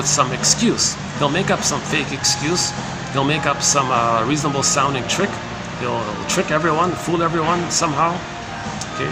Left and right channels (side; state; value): both; identical; correlation 1.00